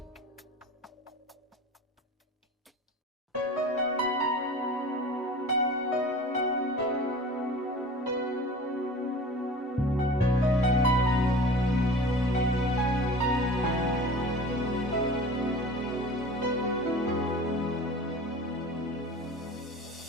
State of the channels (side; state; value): both; normal; correlation 0.39